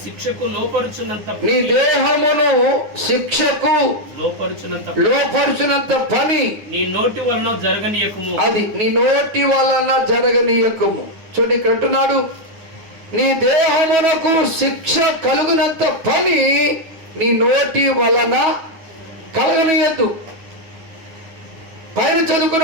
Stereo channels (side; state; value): left; late; 9.3 ms